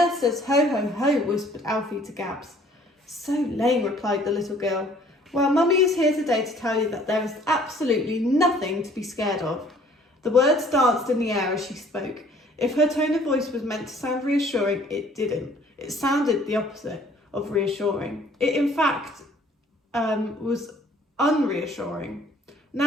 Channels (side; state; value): both; normal; correlation 0.56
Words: says ho, ho, ho?" whispered Alfie to Gabs. "So lame," replied the little girl. "Well, Mummy is here today to tell you that there is absolutely nothing to be scared of." The words danced in the air as she spoke. If her tone of voice was meant to sound reassuring, it didn't. It sounded the opposite of reassuring. It, in fact, was unreassuring.